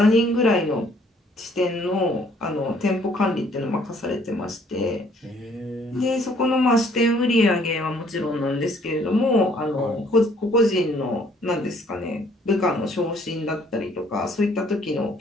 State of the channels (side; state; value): both; normal; correlation 0.62